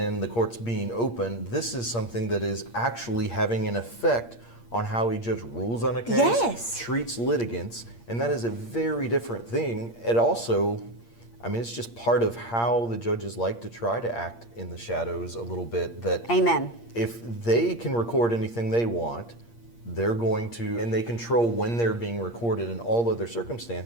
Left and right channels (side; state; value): right; late; 8.6 ms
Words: the courts being open. This is something that is actually having an effect on how a judge rules on a case, treats litigants, and that is a very different thing. It also, I mean, it's just part of how the judges like to try to act in the shadows a little bit. That Amen. If they can record anything they want, they're going to, and they control when they're being recorded in all other